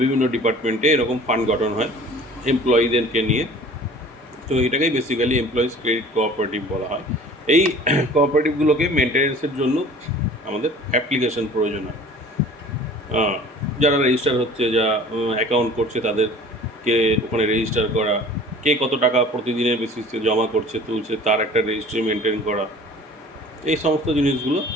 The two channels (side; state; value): both; normal; correlation 0.46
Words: বিভিন্ন ডিপার্টমেন্টে এরকম ফান্ড গঠন হয় এমপ্লয়িদেরকে নিয়ে। তো এটাকেই বেসিক্যালি এমপ্লয়িজ ক্রেডিট কোঅপারেটিভ বলা হয়। এই কোঅপারেটিভগুলোকে মেনটেন্যান্সের জন্য আমাদের অ্যাপ্লিকেশন প্রয়োজন হয়। যারা রেজিস্টার হচ্ছে, যা অ্যাকাউন্ট করছে, তাদেরকে ওখানে রেজিস্টার করা, কে কত টাকা প্রতিদিনের বেসিসে জমা করছে তুলছে তার একটা রেজিস্ট্রি মেনটেন করা, এই সমস্ত জিনিসগুলো